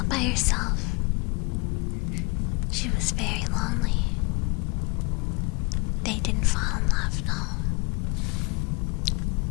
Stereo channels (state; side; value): quieter; right; 29.9 dB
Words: by herself. She was very lonely. They didn't fall in love, no.